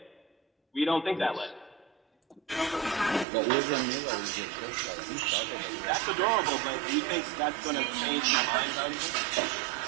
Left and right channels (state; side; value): drops out; left; at 3.2 s